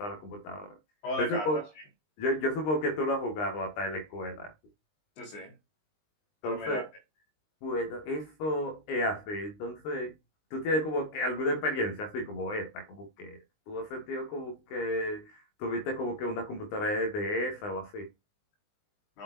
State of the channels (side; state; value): right; late; 19 ms